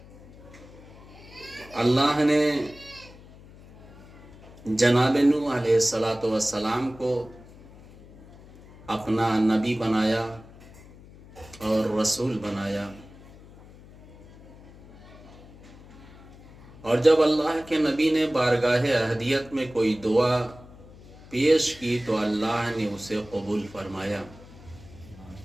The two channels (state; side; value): noise; left; hum, 21 dB below the sound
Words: اللہ نے جناب نوح علیہ السلام کو اپنا نبی بنایا اور رسول بنایا، اور جب اللہ کے نبی نے بارگاہ احدیت میں کوئی دعا پیش کی تو اللہ نے اسے قبول فرمایا.